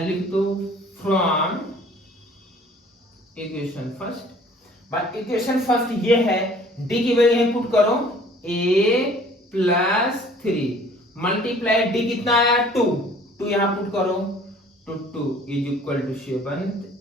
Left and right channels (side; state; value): both; normal; correlation 0.53